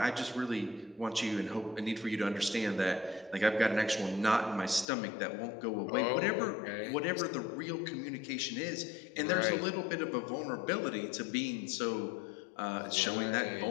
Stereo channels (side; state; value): right; drops out; at 4.9 s